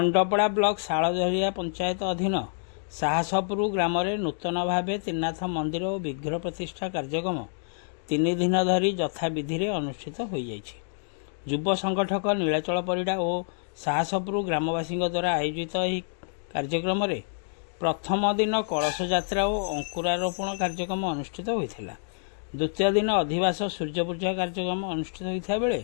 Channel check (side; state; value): right; silent; digital silence